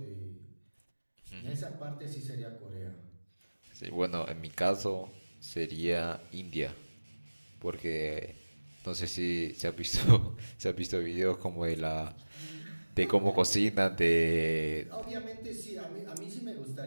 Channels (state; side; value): inverted; both; correlation -1.00